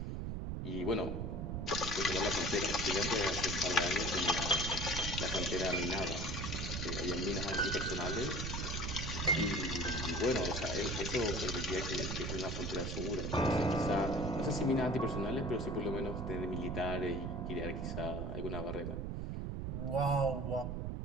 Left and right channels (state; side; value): noise; right; rumble, 3 dB below the sound